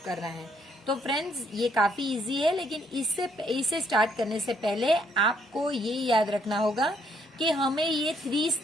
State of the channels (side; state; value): both; normal; correlation 0.70